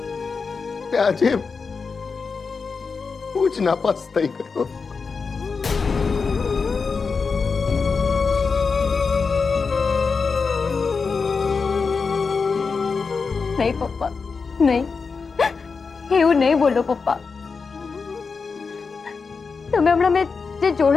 આજે હું જ નાપાસ થઈ ગયો. નહીં પપ્પા, નહીં, એવું નહીં બોલો પપ્પા. તમે હમણાં મેં જે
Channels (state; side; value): quieter; right; 4.9 dB